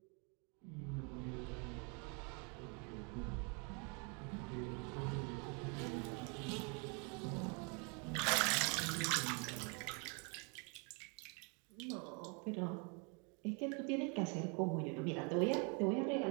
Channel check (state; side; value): quieter; left; 34.8 dB